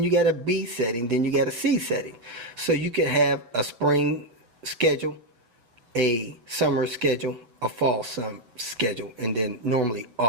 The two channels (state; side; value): late; left; 8.5 ms